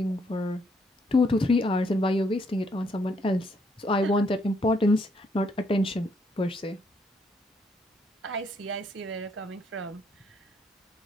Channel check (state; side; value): normal; both; correlation 0.71